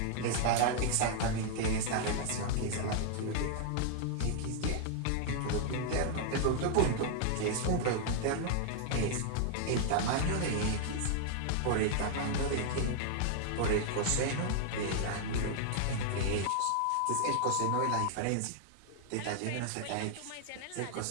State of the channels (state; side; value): different; both; correlation 0.00